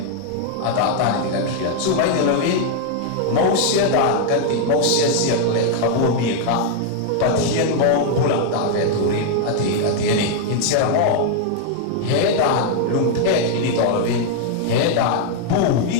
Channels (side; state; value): both; different; correlation 0.00